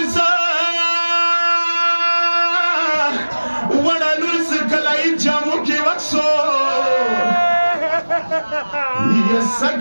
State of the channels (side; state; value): both; inverted; correlation -1.00